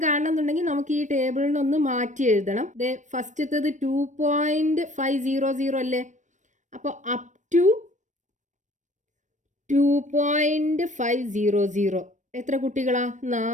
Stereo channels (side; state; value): left; late; 0.35 ms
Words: കാണണമെന്നുണ്ടെങ്കിൽ നമുക്ക് ഈ ടേബിളിനൊന്ന് മാറ്റി എഴുതണം. ഫസ്റ്റത്തത് 2.500 അല്ലേ, അപ്പൊ അപ് ടു 2.500 എത്ര കുട്ടികളാ?